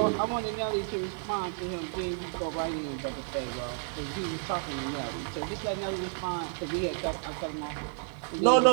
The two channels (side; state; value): left; silent; 57 dB below the other